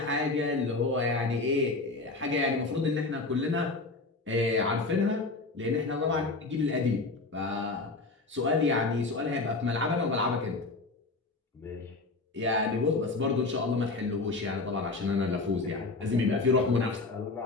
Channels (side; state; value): right; quieter; 3.5 dB